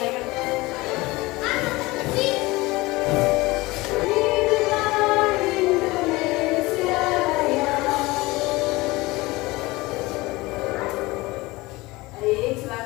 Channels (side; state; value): right; quieter; 21.3 dB